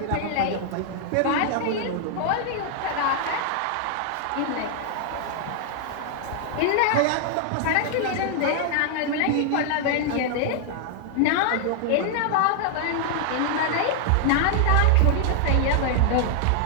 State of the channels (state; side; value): different; both; correlation 0.00